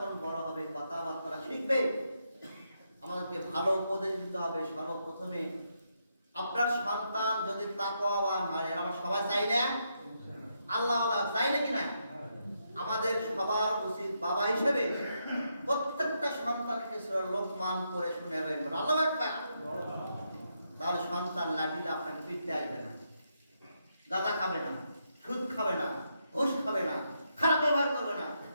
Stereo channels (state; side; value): inverted; both; correlation -0.80